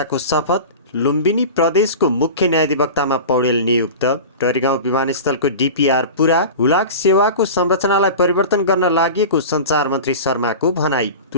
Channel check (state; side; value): inverted; both; correlation -0.32